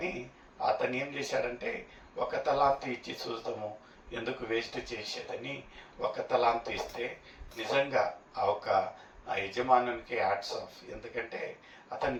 అతను ఏం చేశాడంటే ఒక తలాంతు ఇచ్చి చూద్దాము, ఎందుకు వేస్ట్ చేసేదని ఒక తలాంతు ఇస్తే నిజంగా ఆ యజమానునికి హ్యాట్స్ ఆఫ్. ఎందుకంటే అతను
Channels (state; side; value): identical; both; correlation 1.00